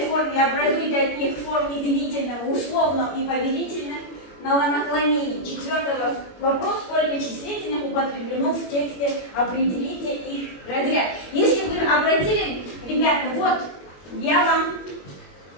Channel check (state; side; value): late; right; 21 ms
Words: форме, образуйте от них в форме делительного, условного и повелительного наклонений. Четвертый вопрос: сколько числительных употреблено в тексте, определите их разряд. Если вы обратили, ребята, вот я вам